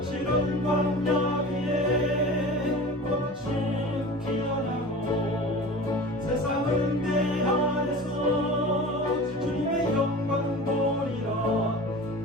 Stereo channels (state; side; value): normal; both; correlation 0.36